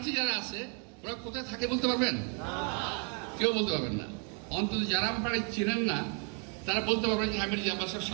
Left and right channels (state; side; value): quieter; left; 38.4 dB